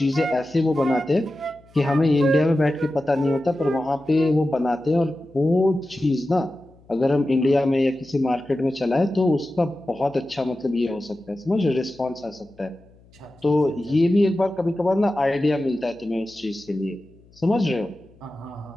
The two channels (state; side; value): noise; left; hum, 28 dB below the sound